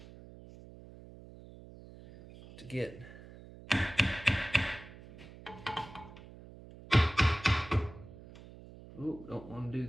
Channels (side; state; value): right; noise; hum, 17 dB below the sound